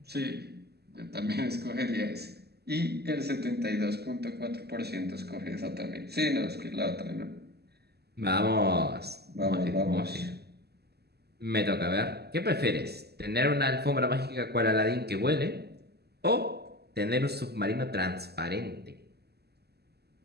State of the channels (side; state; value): left; late; 0.47 ms